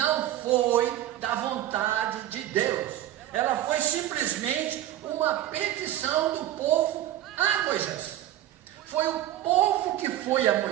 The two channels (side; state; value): left; quieter; 13.3 dB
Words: foi da vontade de Deus. Ela foi simplesmente uma petição do povo a Moisés. Foi o povo que foi a